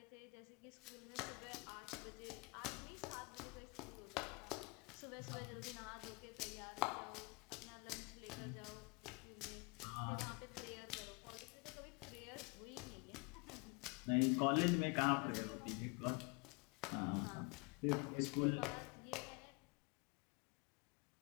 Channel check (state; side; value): quieter; right; 30.5 dB